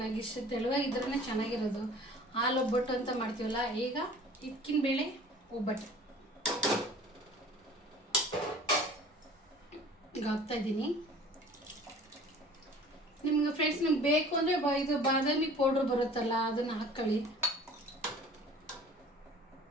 ನನಗೆ ಇಷ್ಟು ತೆಳುವಾಗಿದ್ರೇ ಚೆನ್ನಾಗಿರೋದು. ಹಾಲು ಒಬ್ಬಟ್ಟು ಅಂತ ಮಾಡ್ತೀವಲ್ಲ, ಈಗ ಹಿಕ್ಕಿನ ಬೇಳೆ ಒಬ್ಬಟ್ಟು ಈಗ ಹಾಕ್ತಾಯಿದ್ದೀನಿ. ನಿಮ್ಗೆ ಫ್ರೆಂಡ್ಸ್ ನಿಮ್ಗೆ ಬೇಕು ಅಂದರೆ ಇದು ಬಾದಾಮಿ ಪೌಡ್ರ್ ಬರುತ್ತಲ್ಲ, ಅದನ್ನು ಹಾಕ್ಕೊಳ್ಳಿ.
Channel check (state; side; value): normal; both; correlation 0.47